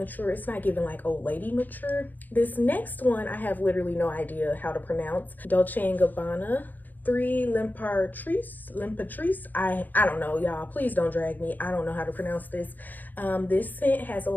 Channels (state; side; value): late; right; 0.085 ms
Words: It's not giving like old lady mature. This next one I have literally no idea how to pronounce. Dolce & Gabbana 3 L'Imperatrice. I don't know, y'all. Please don't drag me. I don't know how to pronounce this. This scent has a